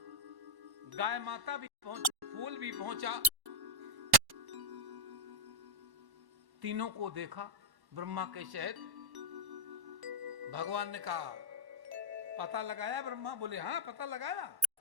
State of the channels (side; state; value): left; late; 1.1 ms